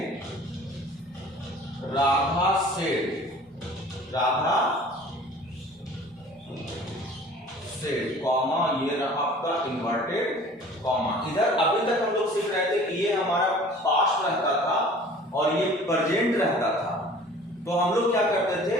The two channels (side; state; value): both; normal; correlation 0.47